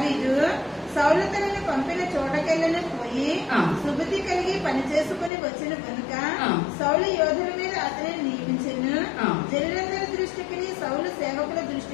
సౌలు తనను పంపిన చోటకెళ్ళను పోయి సుబుద్ధి కలిగి పని చేసుకుని వచ్చిన కనుక సౌలు యోధుల మీద అతనిని నియమించెను. జనులందరి దృష్టికి, సౌలు సేవకుల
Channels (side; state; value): right; drops out; at 5.3 s